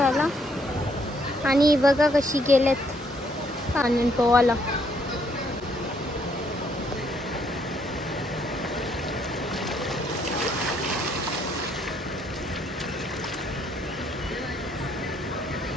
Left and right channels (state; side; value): normal; both; correlation 0.69